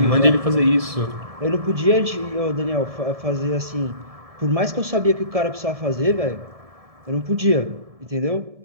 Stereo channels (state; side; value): late; left; 1.7 ms